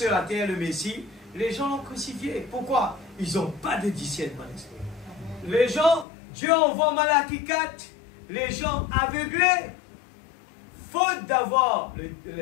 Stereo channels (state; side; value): drops out; right; at 6.1 s